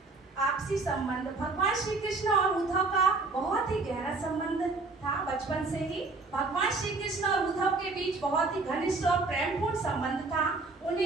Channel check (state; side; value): quieter; left; 3.7 dB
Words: आपसी संबंध। भगवान श्री कृष्ण और उद्धव का बहुत ही गहरा संबंध था। बचपन से ही भगवान श्री कृष्ण और उद्धव के बीच बहुत ही घनिष्ठ और प्रेमपूर्ण संबंध था।